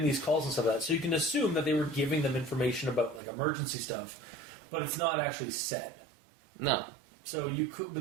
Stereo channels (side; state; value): left; drops out; at 3.2 s